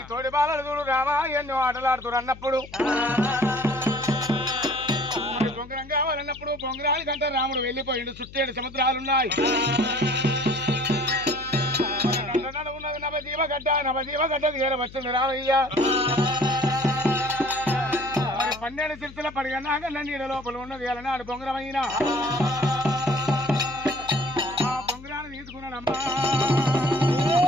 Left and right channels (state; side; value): noise; left; hum, 18 dB below the sound